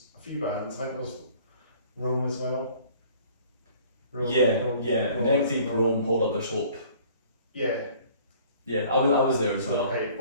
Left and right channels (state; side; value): inverted; both; correlation -0.53